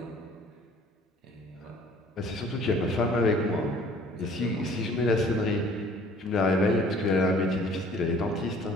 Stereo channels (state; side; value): normal; both; correlation 0.53